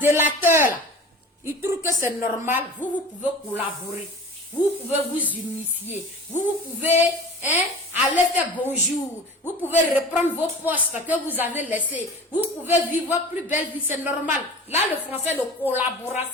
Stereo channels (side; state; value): both; normal; correlation 0.37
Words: là, ils trouvent que c'est normal. Vous pouvez collaborer. Vous pouvez vous unifier. Vous pouvez aller faire bonjour. Vous pouvez reprendre vos postes que vous avez laissés. Vous pouvez vivre votre plus belle vie. C'est normal. Là, le français de